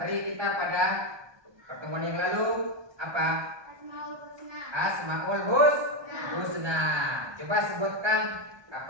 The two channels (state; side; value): late; left; 1.2 ms